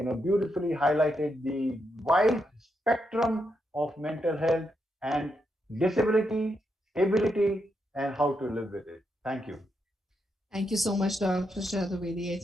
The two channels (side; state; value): both; normal; correlation 0.82